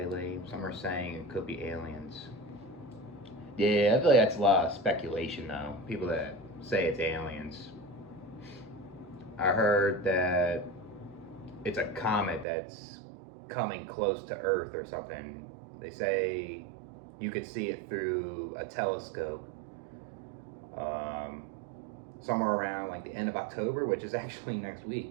Some are saying it could be aliens. Yeah, I feel like that's a lot of speculation, though. People that say it's aliens. I heard that it's a comet that's coming close to Earth or something. They say you could see it through a telescope um, somewhere around like the end of October, which is actually next week,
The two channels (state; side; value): drops out; left; at 12.5 s